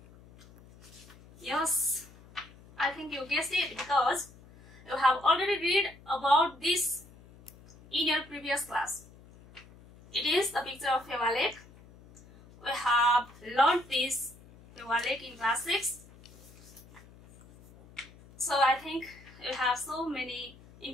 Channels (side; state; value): left; noise; hum, 23 dB below the sound